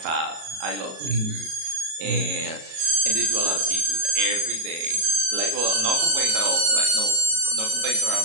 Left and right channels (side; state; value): left; late; 37 ms